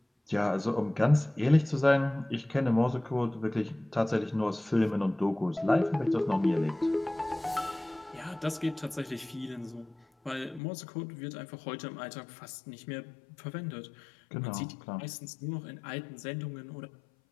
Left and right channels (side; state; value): right; drops out; at 10.6 s